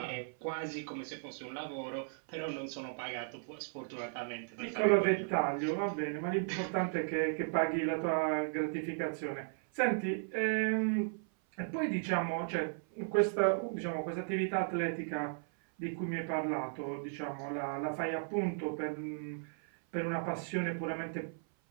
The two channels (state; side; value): silent; left; 54 dB below the other